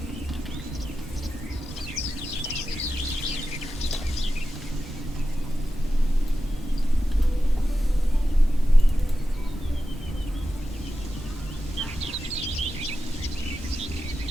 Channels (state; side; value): normal; both; correlation 0.92